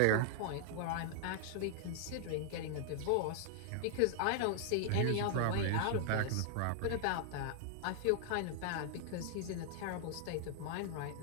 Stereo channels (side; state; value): both; different; correlation 0.00